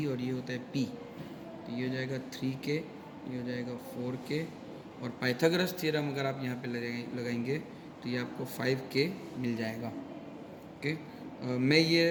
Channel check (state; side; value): identical; both; correlation 1.00